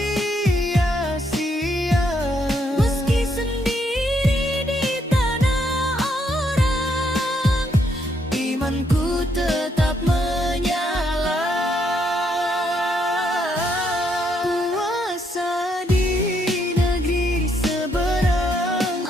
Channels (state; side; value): normal; both; correlation 0.74